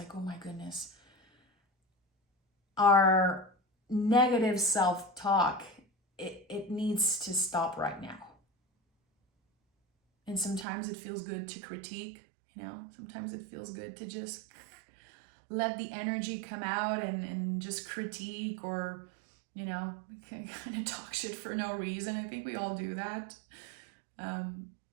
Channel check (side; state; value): left; drops out; at 10.7 s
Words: oh my goodness. Our negative self-talk it needs to stop right now. And sometimes it feels good to critique, you know, sometimes it feels good to just let the energy come out and just critique, or, you know, kind of talk shit for no reason. I think we all do that.